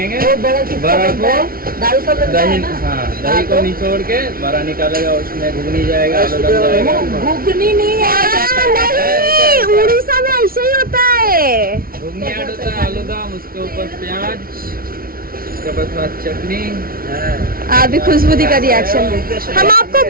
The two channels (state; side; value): late; left; 0.43 ms